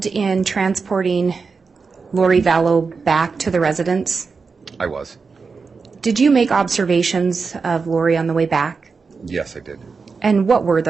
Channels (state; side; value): quieter; left; 4.8 dB